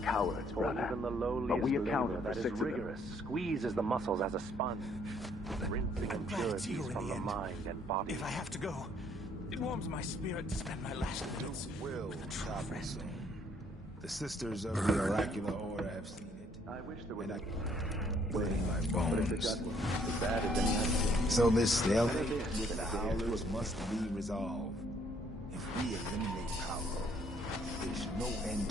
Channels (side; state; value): both; normal; correlation 0.65